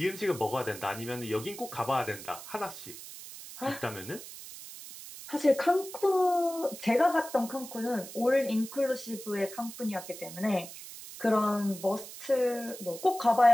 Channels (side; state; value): right; noise; hiss, 13 dB below the sound